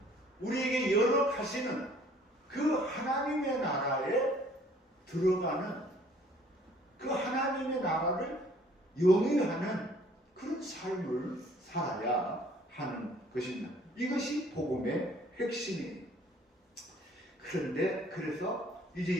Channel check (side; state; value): both; normal; correlation 0.57